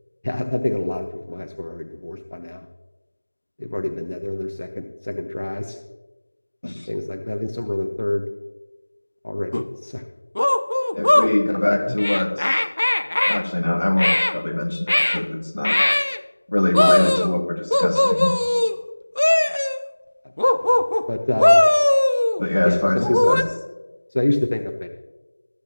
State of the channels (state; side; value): inverted; both; correlation -1.00